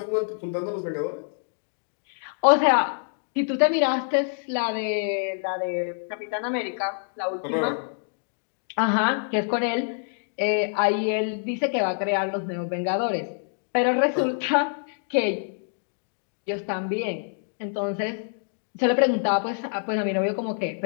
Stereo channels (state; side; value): silent; right; digital silence